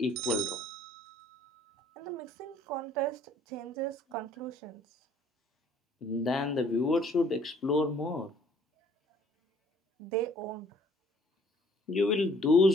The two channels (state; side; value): normal; both; correlation 0.58